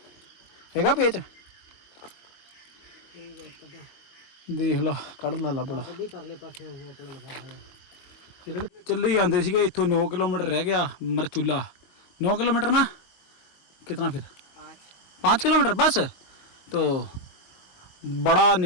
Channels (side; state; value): right; late; 22 ms